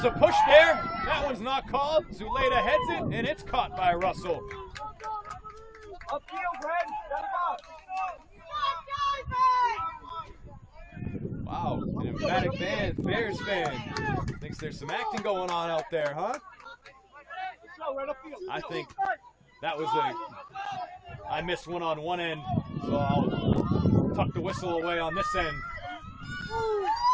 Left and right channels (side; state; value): both; identical; correlation 1.00